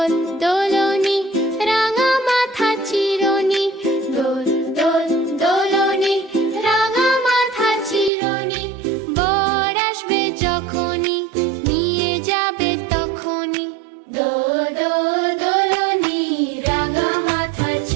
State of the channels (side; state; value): left; drops out; at 8.1 s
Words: দোলনি রাঙা মাথা চিরনি, দোল দোল দোলনি রাঙা মাথা চিরনি। বর আসবে যখনই নিয়ে যাবে তখনই, দোল দোল দোলনি রাঙা মাথা